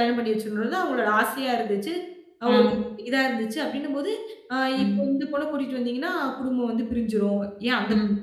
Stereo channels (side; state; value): both; identical; correlation 1.00